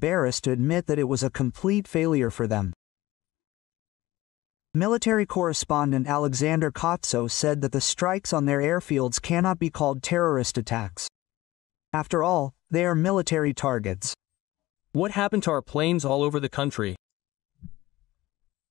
to admit that it was a complete failure for them. Military correspondent Alexander Kotso said that the strikes on their airfields cannot be called terrorist attacks. After all, they are military targets. What happened to our planes all over the country?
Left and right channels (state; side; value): quieter; right; 17.9 dB